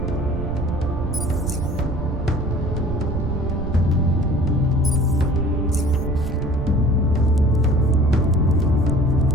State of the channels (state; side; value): noise; right; rumble, 5 dB below the sound